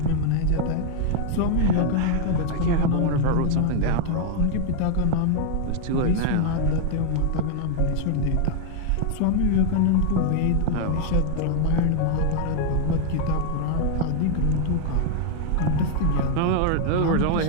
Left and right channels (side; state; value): both; different; correlation 0.00